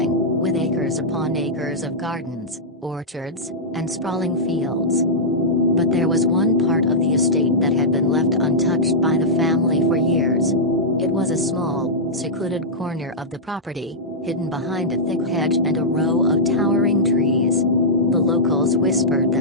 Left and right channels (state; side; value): normal; both; correlation -0.10